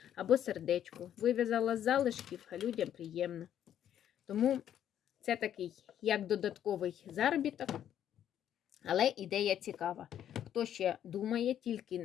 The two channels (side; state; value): right; quieter; 10.4 dB